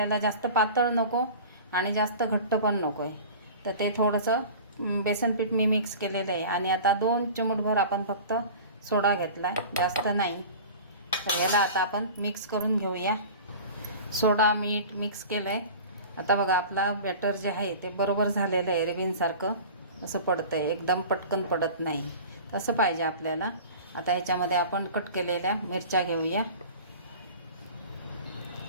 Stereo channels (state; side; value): inverted; both; correlation -0.38